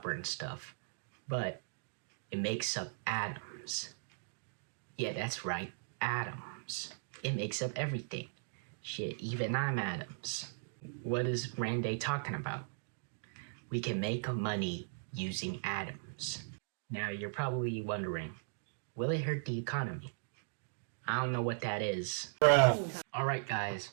and stuff, but it makes up atoms. Yeah, that's right, atoms. It makes up everything. Shit, even I'm atoms. What is Randy talking about? We can make money using atoms. Now you're probably wondering, will it hurt the economy? I don't know what that is. Alright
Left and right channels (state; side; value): silent; left; digital silence